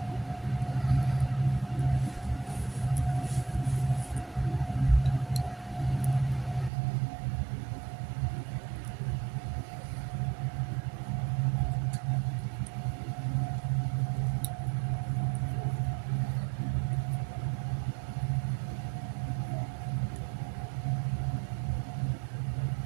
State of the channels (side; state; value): left; drops out; at 6.7 s